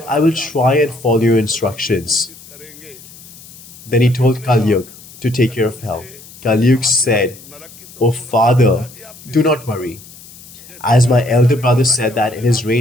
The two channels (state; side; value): noise; left; hiss, 20 dB below the sound